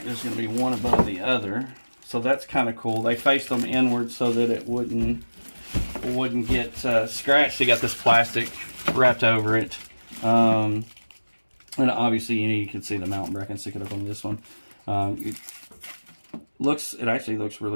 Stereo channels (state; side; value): inverted; both; correlation -1.00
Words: there's going to be one above the other, so that's kind of cool. They faced them inward so that it wouldn't get scratched. They got this plastic wrapped over it, and obviously you can see the mountain bracket. Stick it up on this one. It actually looks